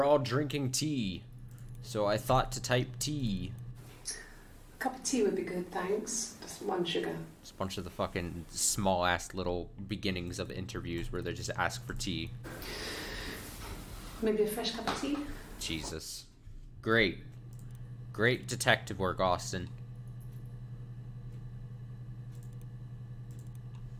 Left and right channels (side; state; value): both; identical; correlation 1.00